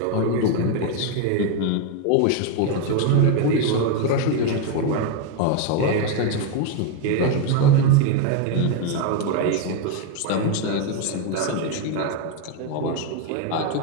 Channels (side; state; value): both; different; correlation 0.02